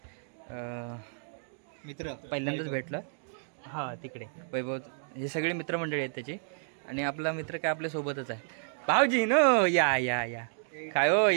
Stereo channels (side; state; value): left; silent; digital silence